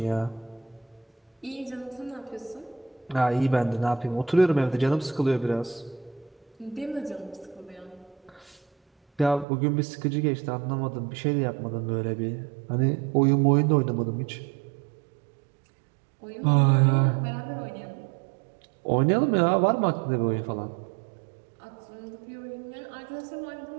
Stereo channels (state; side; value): drops out; left; at 9.5 s